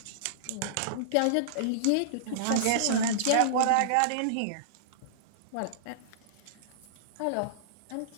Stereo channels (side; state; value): both; different; correlation -0.02